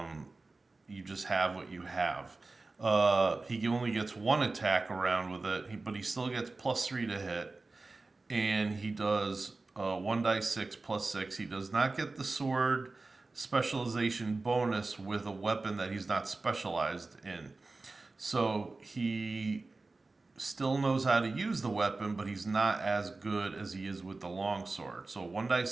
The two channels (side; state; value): left; quieter; 3.5 dB